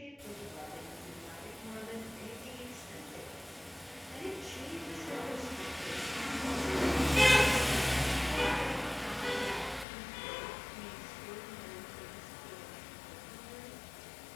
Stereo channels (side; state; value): right; drops out; at 9.9 s